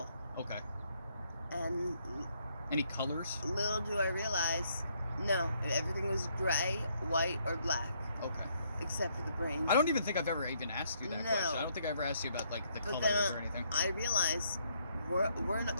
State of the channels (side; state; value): both; inverted; correlation -0.71